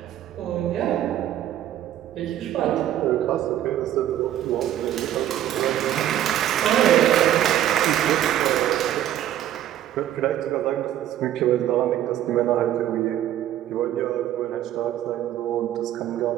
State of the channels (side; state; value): left; quieter; 12.0 dB